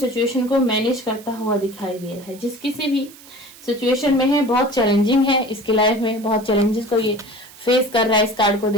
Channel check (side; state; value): right; noise; hiss, 21 dB below the sound